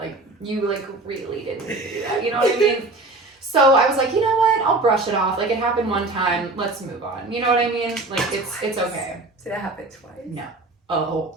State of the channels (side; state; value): left; quieter; 3.0 dB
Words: you, like, really didn't need to do that. You know what I mean? So I was like, you know what? I'll brush it off. Like, it happened one time. Let's move on. You know what I mean? Like, it's okay. Did it happen twice? No.